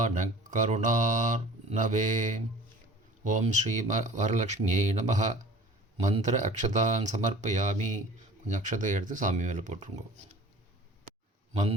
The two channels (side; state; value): both; normal; correlation 0.45